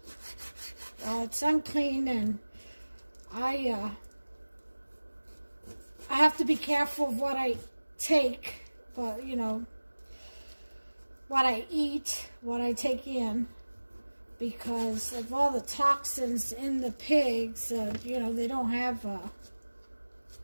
it's unclean, and I have to be careful of what I take, but you know, what I eat, what I take in, because of all the toxins in the pigs. You know, they don't have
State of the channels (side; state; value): both; inverted; correlation -1.00